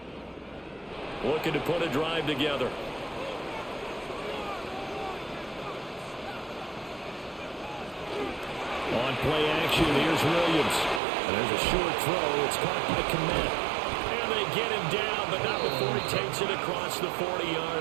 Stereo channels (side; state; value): left; drops out; at 11.0 s